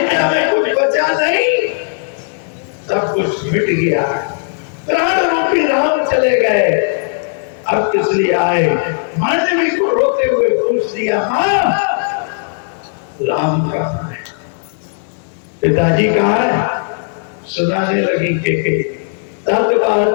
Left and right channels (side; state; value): right; silent; digital silence